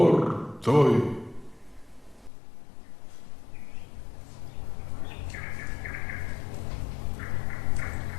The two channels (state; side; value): drops out; right; at 2.3 s